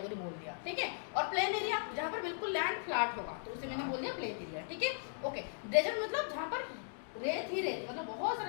बोल दिया, ठीक है। और प्लेन एरिया जहाँ पर बिल्कुल लैंड फ्लैट होगा तो उसे मैंने बोल दिया प्लेन एरिया, ठीक है, ओके। डेजर्ट मतलब जहाँ पर रेत ही रेत, मतलब बहुत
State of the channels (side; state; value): right; silent; digital silence